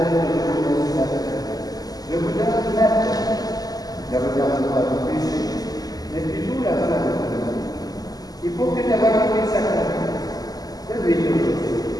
de venir ce matin. Je vous donne la paix. Ne regarde pas vos péchés, mais plutôt la volonté de Dieu. Il faut que ta volonté s'accomplisse. Donne-lui aujourd'hui.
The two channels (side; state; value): right; late; 0.18 ms